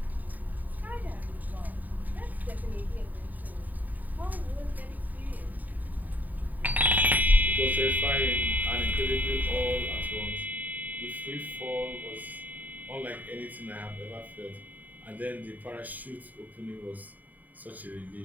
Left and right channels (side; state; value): left; late; 0.083 ms